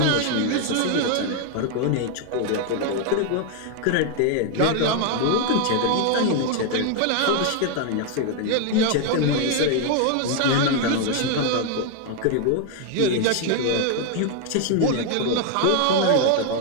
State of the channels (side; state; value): both; different; correlation 0.00